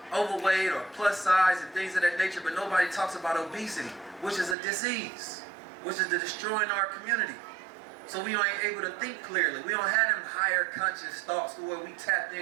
overweight or plus size and things of that nature, but nobody talks about obesity, which is a disease, which is destroying our community. So we ain't able to think clearly. We don't have them higher conscious thoughts to where we tapped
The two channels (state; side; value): drops out; left; at 4.5 s